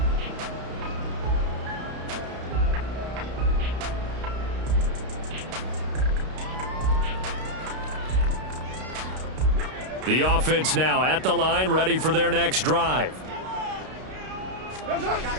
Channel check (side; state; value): left; late; 32 ms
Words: The offense now at the line, ready for their next drive.